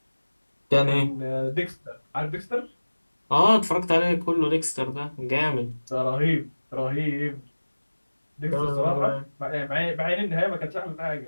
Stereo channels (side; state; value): both; inverted; correlation -1.00